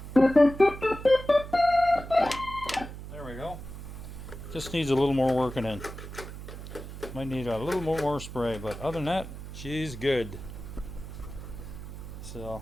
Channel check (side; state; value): right; noise; hum, 11 dB below the sound